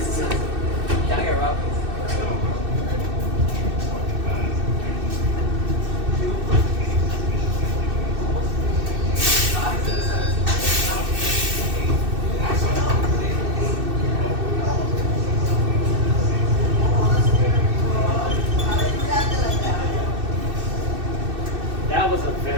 Can I get Rob? That was a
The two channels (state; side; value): late; left; 2.6 ms